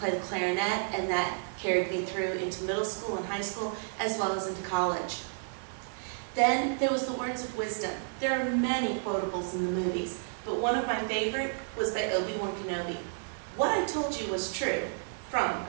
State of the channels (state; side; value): silent; left; digital silence